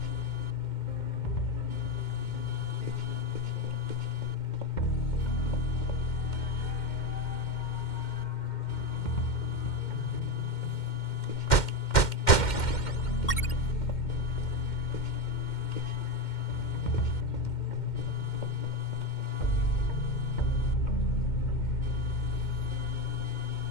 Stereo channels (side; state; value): right; late; 2.1 ms